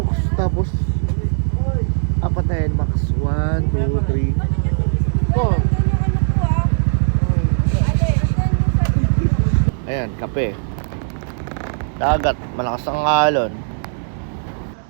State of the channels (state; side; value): silent; left; digital silence